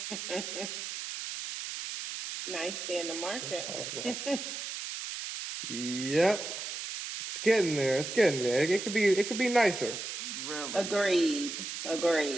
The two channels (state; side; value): noise; right; hiss, 6 dB below the sound